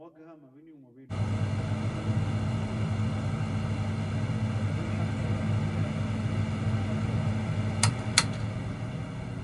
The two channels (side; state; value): both; identical; correlation 1.00